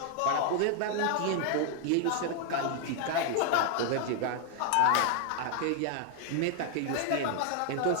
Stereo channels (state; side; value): different; both; correlation 0.00